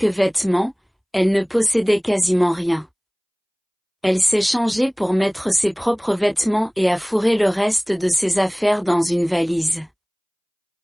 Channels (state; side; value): identical; both; correlation 1.00